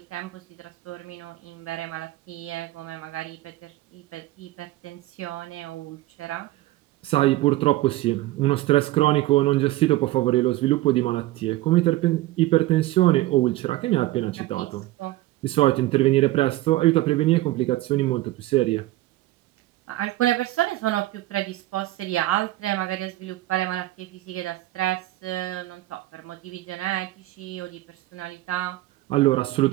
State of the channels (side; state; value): left; quieter; 17.2 dB